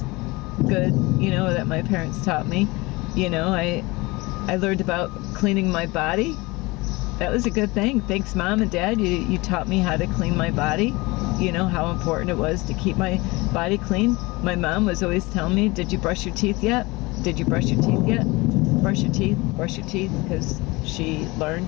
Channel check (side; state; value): right; quieter; 23.2 dB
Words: good, you know, that my parents taught me. You know, I learned about cleaning my body. That was a good thing. Thanks, Mom and Dad. You taught me how to clean my body. You know, how important it was to keep my body clean. My mom was always telling me, did you brush your teeth yet? Did you brush your teeth yet? Brush your teeth, because she